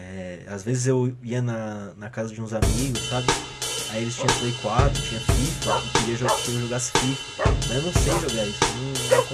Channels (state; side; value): identical; both; correlation 1.00